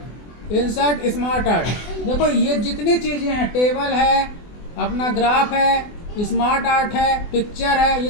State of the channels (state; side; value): late; right; 24 ms